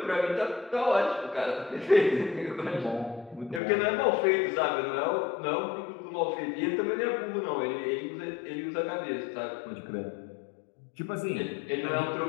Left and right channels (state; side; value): drops out; right; at 3.6 s